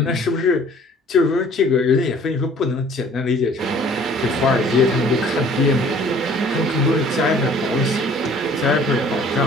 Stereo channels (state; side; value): normal; both; correlation 0.53